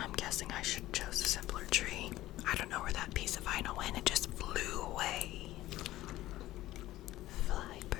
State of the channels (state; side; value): quieter; right; 15.8 dB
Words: guessing I should have chose a simpler tree. I don't know where that piece of vinyl went. It just flew away. Fly